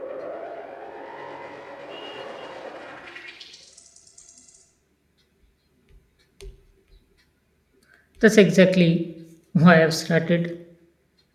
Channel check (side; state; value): both; identical; correlation 1.00